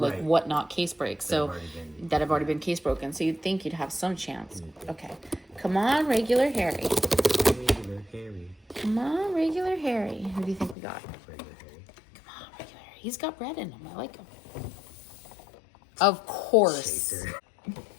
Whatnot case breaks. That have already been case broken. So you'd think you'd have some chance. Okay, come on, regular Harry. Regular Harry. Come on, regular Harry. Who do you think we got? Regular Harry. Come on, regular Harry. He's got red in him. I like him. Of course. Chaser.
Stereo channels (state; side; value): drops out; right; at 10.8 s